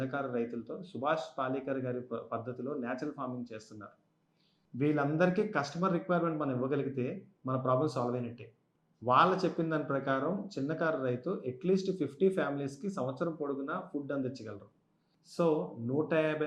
రైతులతో సుభాష్ పాలేకర్ గారి పద్ధతిలో న్యాచురల్ ఫార్మింగ్ చేస్తున్నారు. వీళ్ళందరికీ కస్టమర్ రిక్వైర్మెంట్ మనం ఇవ్వగలిగితే మన ప్రాబ్లం సాల్వ్ అయినట్టే. వాళ్ళు చెప్పిన దాని ప్రకారం చిన్నకారు రైతు అట్లీస్ట్ 50 ఫ్యామిలీస్కి సంవత్సరం పొడుగునా ఫుడ్ అందించగలరు. సో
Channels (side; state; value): both; identical; correlation 1.00